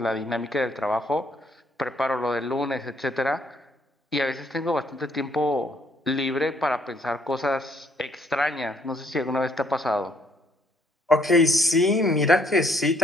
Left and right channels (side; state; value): both; normal; correlation 0.67